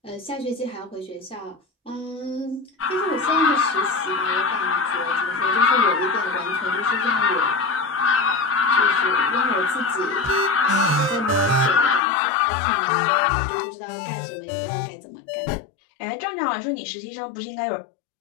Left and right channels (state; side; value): drops out; right; at 12.0 s